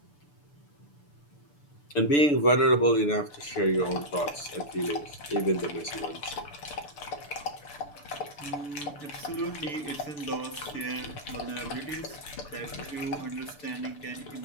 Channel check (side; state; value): right; late; 6.8 ms